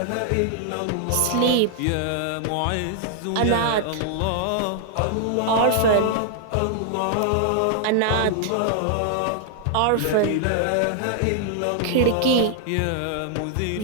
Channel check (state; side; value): different; both; correlation -0.01